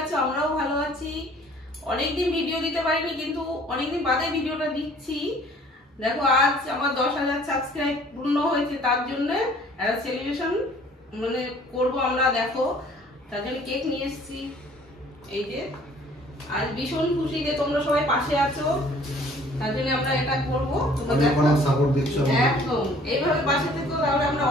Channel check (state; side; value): normal; both; correlation 0.55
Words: আছো, আমরাও ভালো আছি। অনেকদিন ভিডিও দিতে পারিনি, কিন্তু অনেকদিন বাদে ভিডিওটা দিচ্ছি। দেখো, আজ আমার 10,000 সাবস্ক্রাইব পূর্ণ হয়েছে, তার জন্য একটা সেলিব্রেশন করবো আমরা। দেখো, তার জন্য কেক নিয়ে এসেছি। এই যে আজ ভীষণ খুশি যে তোমরা সবাই পাশে আছো, তার জন্য আমরা এটা করবো। তোমরা সাপোর্ট দিচ্ছ, একদম এইভাবে পাশে থেকো, তাহলে আমরা